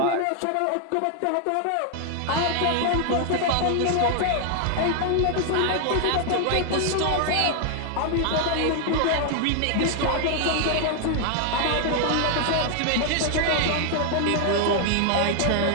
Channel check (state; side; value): different; both; correlation 0.00